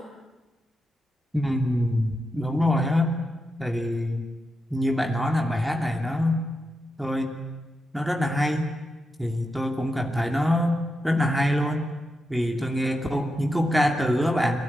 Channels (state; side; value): normal; both; correlation 0.87